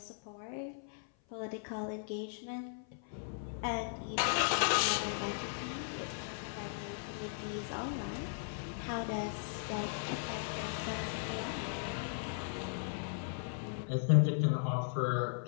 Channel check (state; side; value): silent; right; 53 dB below the other